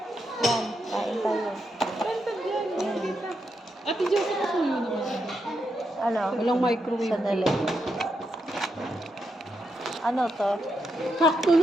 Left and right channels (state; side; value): normal; both; correlation 0.82